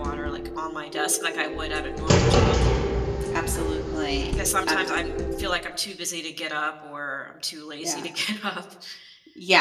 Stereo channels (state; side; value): identical; both; correlation 1.00